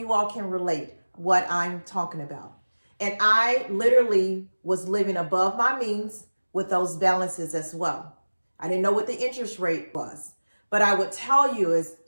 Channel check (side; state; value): both; inverted; correlation -1.00